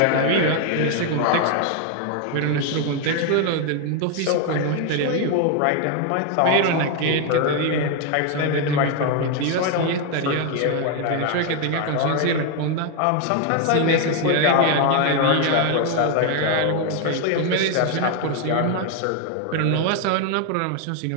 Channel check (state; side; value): different; both; correlation 0.01